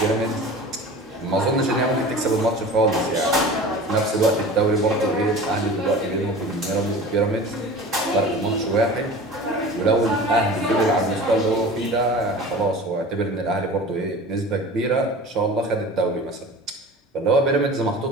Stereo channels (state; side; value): normal; both; correlation 0.38